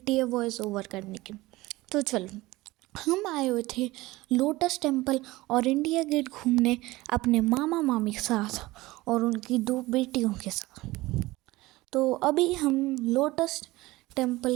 है वॉइस ओवर करने की। तो चलो, हम आए हुए थे लोटस टेम्पल और इंडिया गेट घूमने अपने मामा मामी के साथ और उनकी 2 बेटियों के साथ। तो अभी हम लोटस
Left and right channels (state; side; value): quieter; left; 19.6 dB